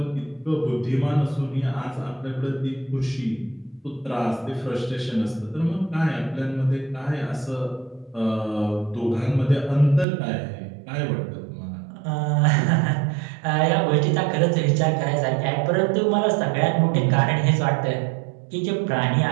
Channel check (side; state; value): left; drops out; at 10.1 s